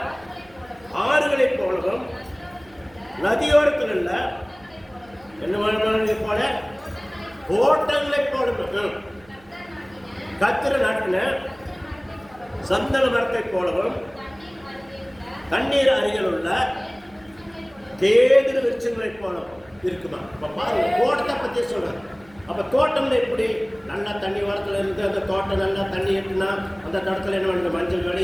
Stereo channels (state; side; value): noise; right; hum, 26 dB below the sound